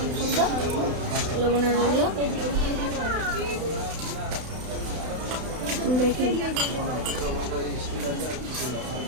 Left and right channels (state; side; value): late; left; 32 ms